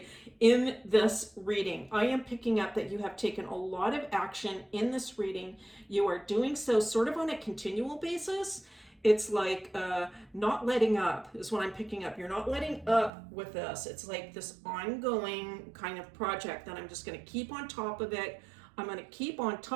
in this reading. I am picking up that you have taken a lot of action in this reading. You are doing so sort of on a continual basis. It's like not letting up is what I'm picking up. You're not letting up with this. It's like this ongoing kind of project that I'm just going to keep on top of it. I'm going to keep on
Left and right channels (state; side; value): drops out; left; at 13.1 s